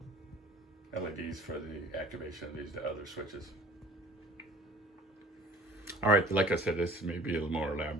LEDs for the activation of these other switches. All right, like I said, this may be a little more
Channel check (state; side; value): normal; both; correlation 0.49